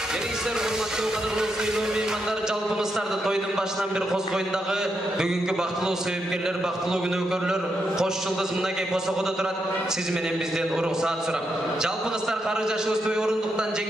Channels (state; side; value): normal; both; correlation 0.82